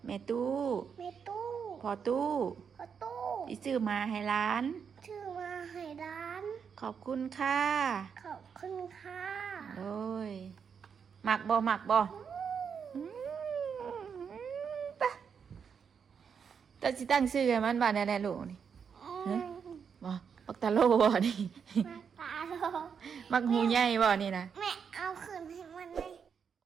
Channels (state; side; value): quieter; left; 6.7 dB